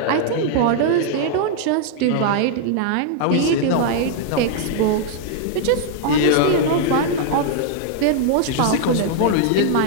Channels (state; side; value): different; both; correlation 0.00